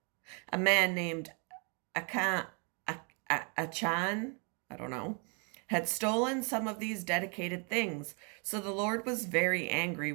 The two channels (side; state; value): left; quieter; 36.3 dB